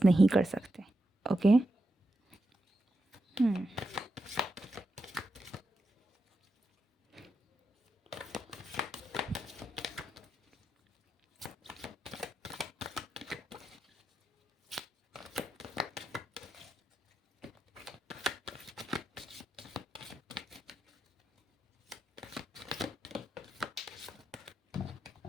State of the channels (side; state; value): both; normal; correlation 0.86